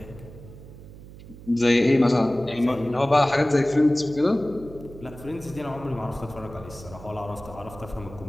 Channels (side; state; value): right; noise; hum, 17 dB below the sound